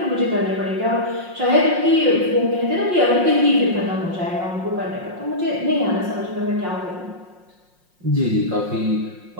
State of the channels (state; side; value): late; left; 5.6 ms